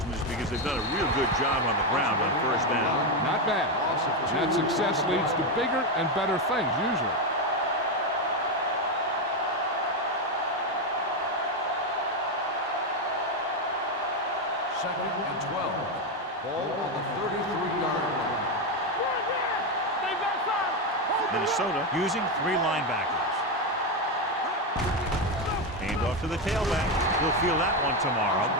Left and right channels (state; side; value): normal; both; correlation 0.09